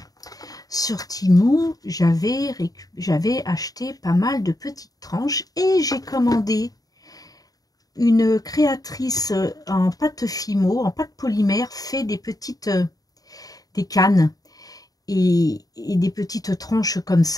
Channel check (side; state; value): right; late; 0.18 ms